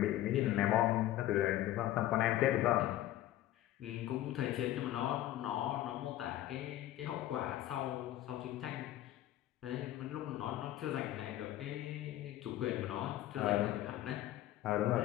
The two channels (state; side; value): quieter; right; 14.1 dB